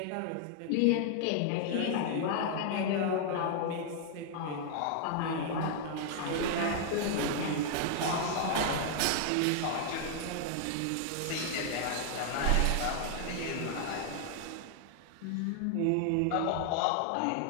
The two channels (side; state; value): both; different; correlation 0.00